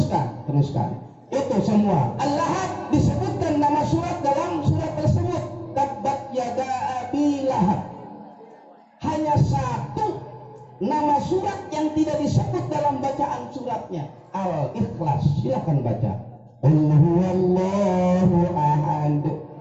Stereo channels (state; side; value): identical; both; correlation 1.00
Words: Itu semua. Al-Lahab disebutkan nama surat dalam surat tersebut. Tabbat yada abi lahab. Hanya satu nama surat yang tidak disebut dalam bacaan suratnya, Al-Ikhlas. Silakan baca. Qul huwallahu ahad,